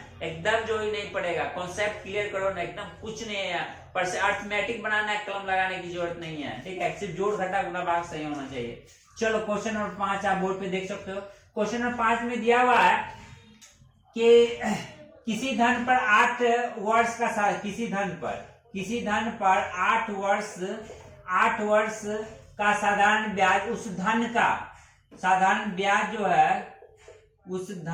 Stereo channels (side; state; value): both; identical; correlation 1.00